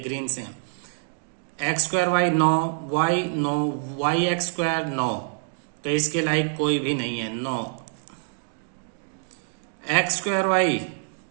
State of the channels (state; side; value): silent; left; digital silence